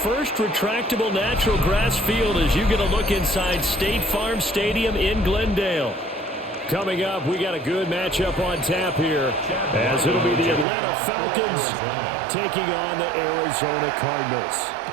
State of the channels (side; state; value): left; drops out; at 10.7 s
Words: retractable natural grass field as you get a look inside State Farm Stadium in Glendale. Coming up, we got a good matchup on tap here as it'll be the Atlanta Falcons taking on the Arizona Cardinals.